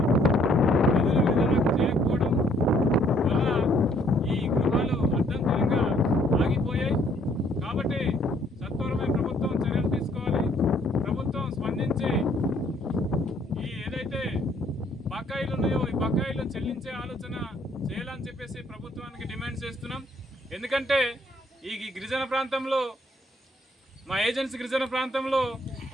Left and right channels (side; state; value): both; normal; correlation 0.65